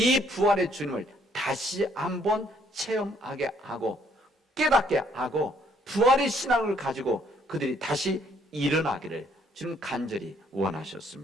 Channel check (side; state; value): both; normal; correlation 0.66